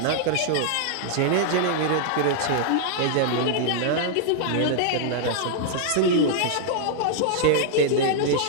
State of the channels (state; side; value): different; both; correlation -0.01